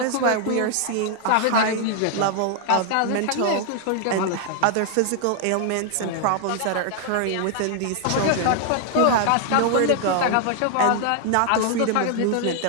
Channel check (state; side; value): different; both; correlation 0.00